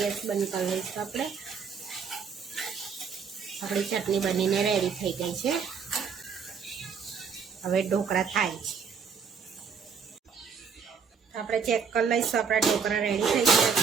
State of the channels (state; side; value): quieter; left; 6.1 dB